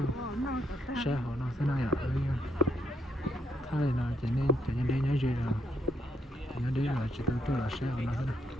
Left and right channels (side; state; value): both; normal; correlation 0.76